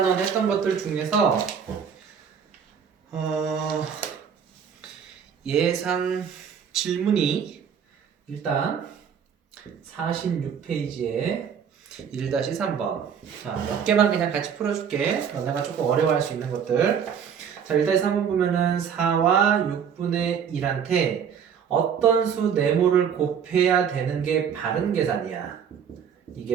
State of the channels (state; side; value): quieter; left; 7.5 dB